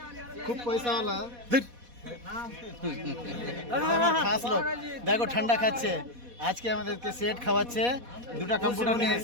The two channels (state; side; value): late; left; 4.1 ms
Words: খুব পয়সাওয়ালা, এটা আমার খাস লোক। দেখো ঠান্ডা খাচ্ছে, আজকে আমাদেরকে সেট খাওয়াচ্ছে, দুটা কম্পিউটার নিয়ে